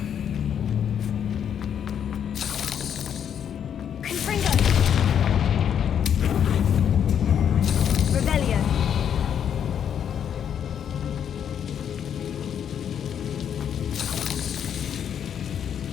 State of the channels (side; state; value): right; quieter; 8.7 dB